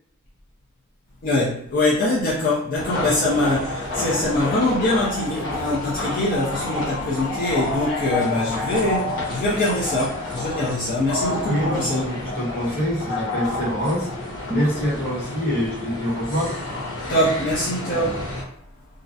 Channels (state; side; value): normal; both; correlation 0.34